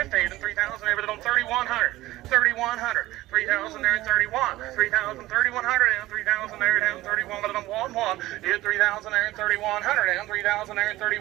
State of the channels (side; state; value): left; quieter; 16.9 dB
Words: then 3,000 there, but on 3,100, 3,100, 3,000 there, 31, 3,000, 3,100, and 3,000 there, down 31, but on 1, hit 3,000 there, 3,100, and 3,000 there,